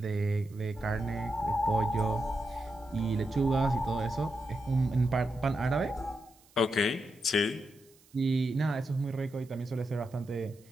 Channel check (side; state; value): right; noise; hiss, 29 dB below the sound